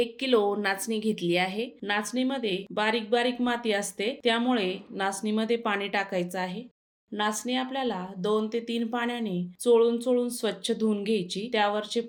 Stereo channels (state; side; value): identical; both; correlation 1.00